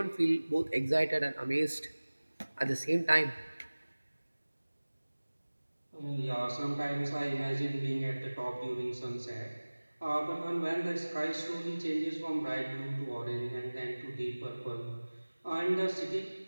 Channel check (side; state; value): both; inverted; correlation -1.00